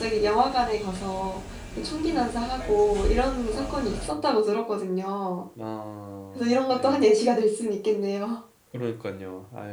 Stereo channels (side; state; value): both; identical; correlation 1.00